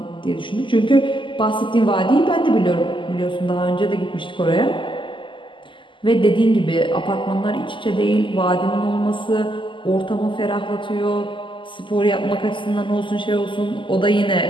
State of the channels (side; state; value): right; late; 0.24 ms